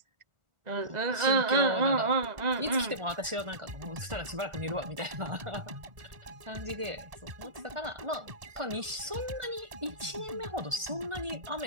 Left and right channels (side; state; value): left; late; 1.4 ms